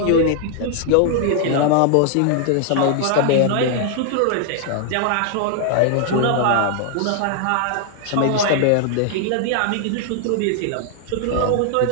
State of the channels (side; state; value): both; different; correlation 0.00